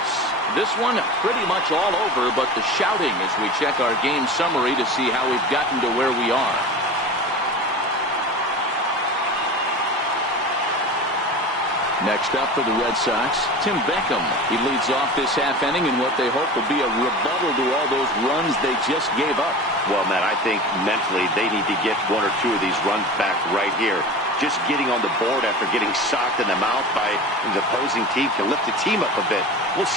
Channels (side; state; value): both; normal; correlation 0.33